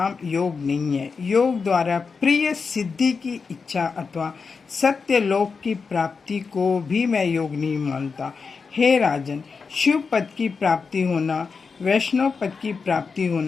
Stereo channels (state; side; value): quieter; right; 5.1 dB